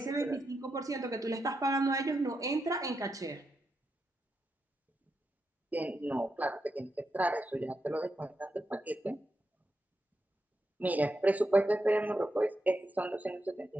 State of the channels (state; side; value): normal; both; correlation 0.86